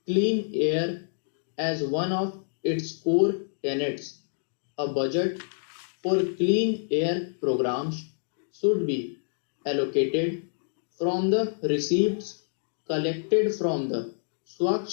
clean air as one of its core tenets. A budget for clean air programs should be allocated from the receipts collected from the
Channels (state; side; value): silent; right; digital silence